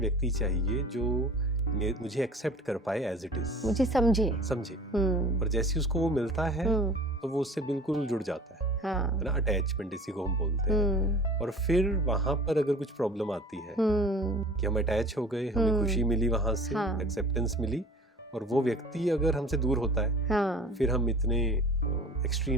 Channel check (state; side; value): normal; both; correlation 0.43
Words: चाहिए जो मुझे एक्सेप्ट कर पाए एज इट इज, मुझे समझे। और जैसे उसको वो मिलता है तो वो उससे बिल्कुल जुड़ जाता है ना। अटैचमेंट इसी को हम बोलते हैं। और फिर वहां पर अगर कुछ प्रॉब्लम आती है कि हम अटैच हो गए, हमें खुशी मिली वहां से, एक्सेप्टेंस मिली, और वो व्यक्ति अगर हमसे दूर होता है, फिर हम इतने